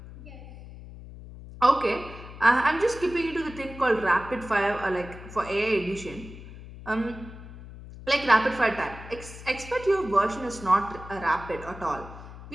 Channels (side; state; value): left; noise; hum, 15 dB below the sound